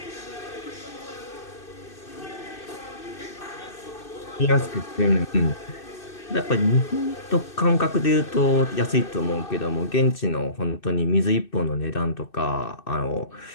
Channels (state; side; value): late; right; 2.6 ms